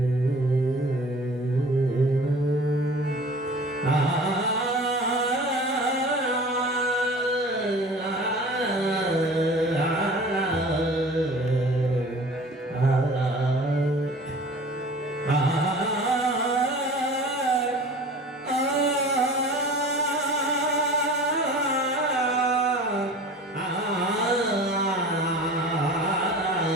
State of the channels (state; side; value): normal; both; correlation 0.42